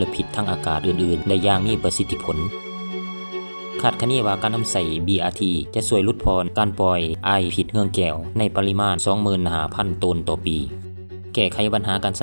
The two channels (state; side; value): inverted; both; correlation -1.00